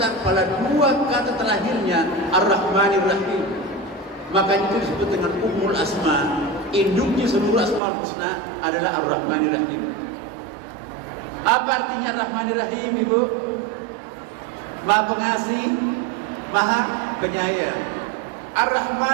pada 2 kata terakhirnya, Ar-Rahmanir-Rahim. Makanya itu disebut dengan Ummul Asma. Induknya seluruh Asmaul Husna adalah Ar-Rahmanir-Rahim. Apa artinya Ar-Rahmanir-Rahim, Ibu? Maha pengasih, Maha penyayang.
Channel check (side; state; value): left; drops out; at 7.8 s